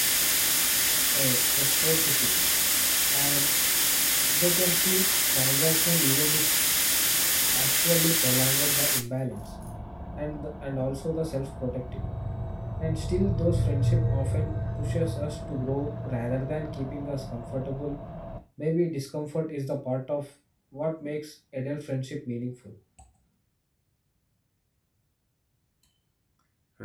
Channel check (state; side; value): identical; both; correlation 1.00